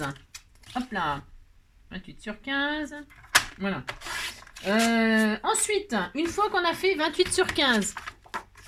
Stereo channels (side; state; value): both; identical; correlation 1.00